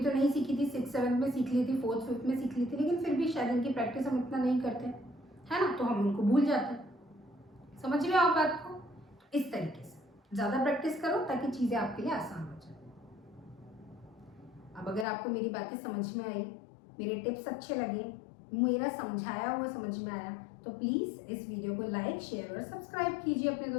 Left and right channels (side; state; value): right; drops out; at 15.1 s